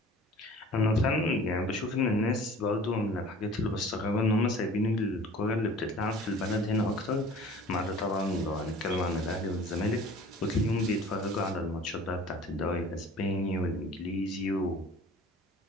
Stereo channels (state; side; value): normal; both; correlation 0.46